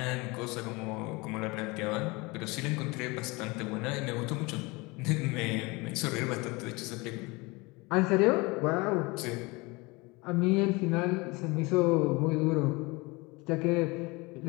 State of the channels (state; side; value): quieter; right; 24.9 dB